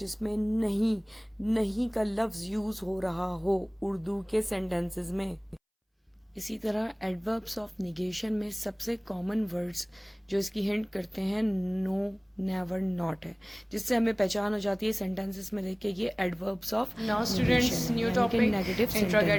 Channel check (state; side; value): identical; both; correlation 1.00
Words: नहीं का लफ्ज़ यूज़ हो रहा हो उर्दू के सेंटेंसेस में। इसी तरह एडवर्ब्स ऑफ निगेशन में सबसे कॉमन वर्ड्स जो इसकी हिंट करते हैं नो, नेवर, नॉट है, जिससे हमें पहचान हो जाती है सेंटेंसेस में देख के ये adverbs of. Now students, new topic,